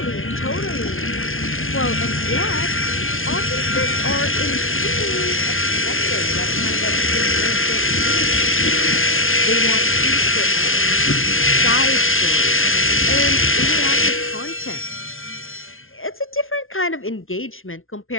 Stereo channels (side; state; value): right; late; 0.60 ms